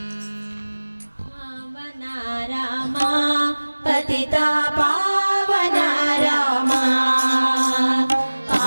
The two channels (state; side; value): inverted; both; correlation -1.00